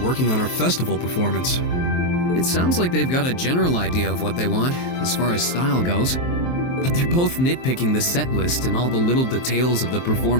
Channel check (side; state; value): right; late; 23 ms